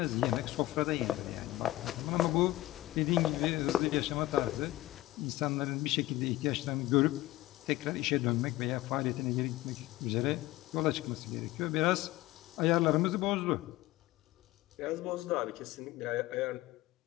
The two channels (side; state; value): right; quieter; 16.8 dB